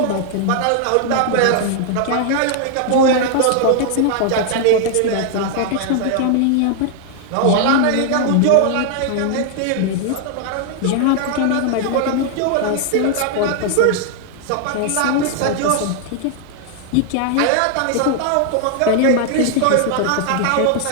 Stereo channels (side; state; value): both; different; correlation 0.00